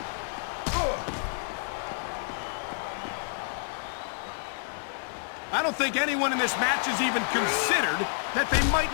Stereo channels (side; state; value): right; silent; digital silence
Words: I don't think anyone in this match has even considered that they might